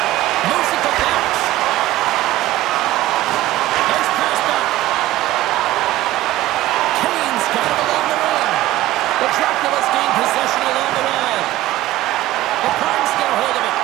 Moves it to Fox. Nice pass back. Kane's got it along the wing. The Dracula's gain possession along the wall. The Primes get a hold of it.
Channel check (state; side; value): quieter; left; 15.7 dB